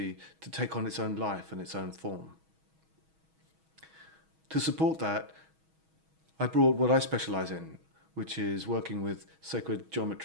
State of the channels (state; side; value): late; left; 6.3 ms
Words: to take on its own life and its own form. To support that, I brought what I specialize in, which is working with sacred